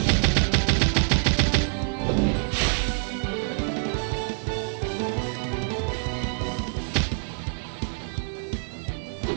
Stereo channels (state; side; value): silent; left; 55 dB below the other